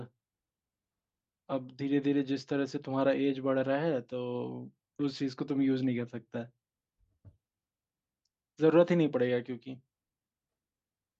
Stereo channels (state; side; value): identical; both; correlation 1.00